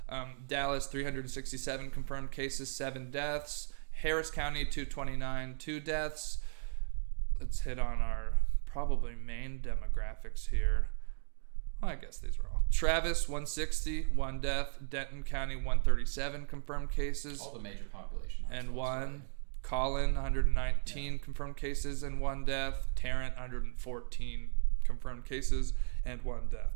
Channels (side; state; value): left; silent; digital silence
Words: Dallas 367 confirmed cases, 7 deaths. Harris County 229, 2 deaths. Let's hit on our probably main demographics here. Well, I guess these are all. Travis 160, 1 death. Denton County 137 confirmed cases. All the major population. And 1. Collin 119 confirmed cases and 1 death. Tarrant 114 confirmed cases and 1